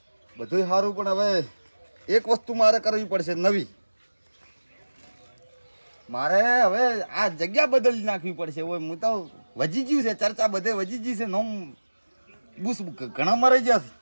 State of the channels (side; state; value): both; inverted; correlation -1.00